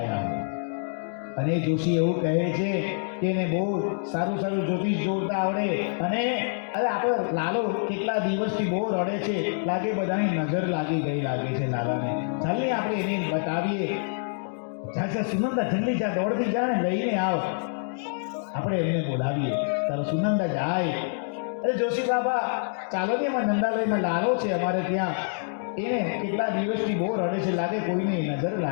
है. અને જોશી એવું કહે છે કે એને બહુ સારું સારું જ્યોતિષ જોતા આવડે. અને અરે આપણો લાલો કેટલા દિવસથી બહુ રડે છે, લાગે બધાની નજર લાગી ગઈ લાગે છે લાલાને. ચાલને આપણે એને બતાવીએ. જા સુનંદા, જલ્દી જા, દોડતી જા ને લઈને આવ, આપણે એમને બોલાવીએ. તારો સુનંદા જાય. અરે જોશી બાબા ચાલો ને, એમાં નંદાલયમાં લાલો છે અમારે ત્યાં, એને કેટલા દિવસથી બહુ રડે છે, લાગે કોઈને નજર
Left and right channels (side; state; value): right; silent; digital silence